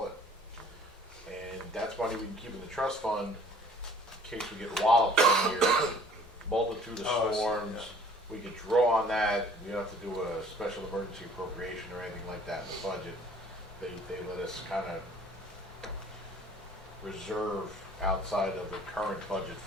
it. And that's money we can keep in the trust fund in case we get walloped one year, multitude of Oh, I see, storms. yeah. We could draw on that. We don't have to do a special emergency appropriation or anything like that in the budget. They let us kind of reserve outside of the current budget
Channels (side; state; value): both; normal; correlation 0.53